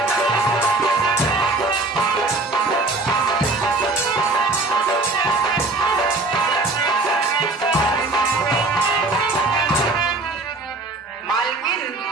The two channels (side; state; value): left; quieter; 3.2 dB